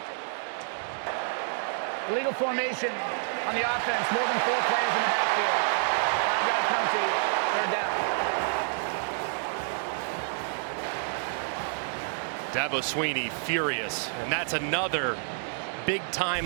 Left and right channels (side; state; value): left; silent; digital silence